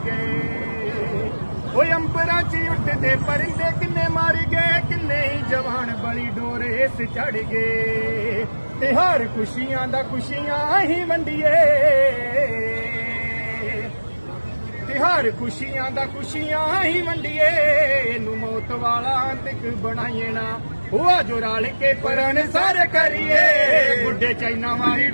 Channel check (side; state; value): both; inverted; correlation -1.00